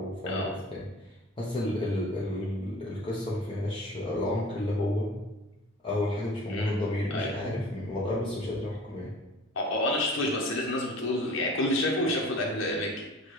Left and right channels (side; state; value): both; normal; correlation 0.42